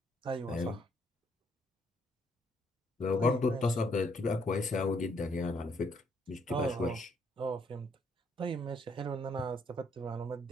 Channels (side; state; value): both; normal; correlation 0.70